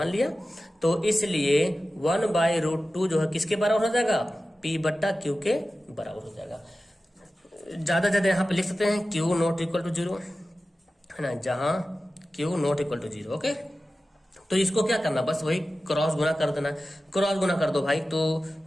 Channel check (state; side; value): normal; both; correlation 0.95